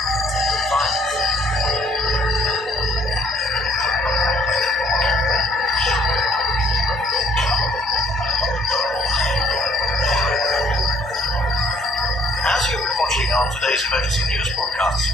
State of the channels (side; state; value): both; normal; correlation 0.61